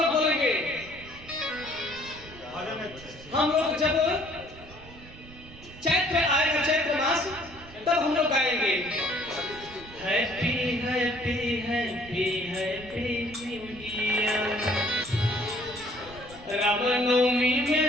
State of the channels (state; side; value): noise; right; rumble, 18 dB below the sound